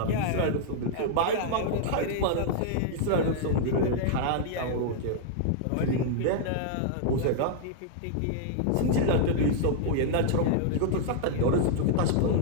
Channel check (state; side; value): different; both; correlation -0.01